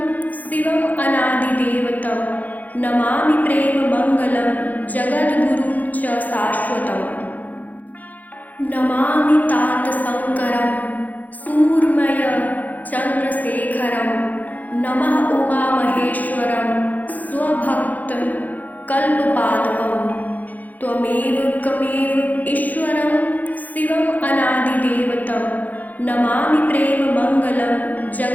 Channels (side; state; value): right; late; 0.080 ms